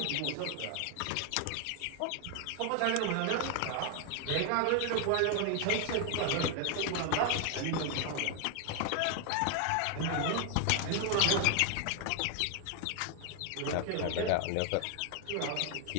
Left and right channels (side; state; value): both; different; correlation 0.00